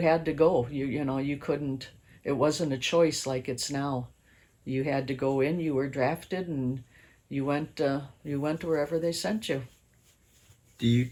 to go. You know, you couldn't, it wasn't a choice like it's now. You had to go in, you were drafted, and you went wherever they sent you. Do you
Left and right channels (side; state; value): both; identical; correlation 1.00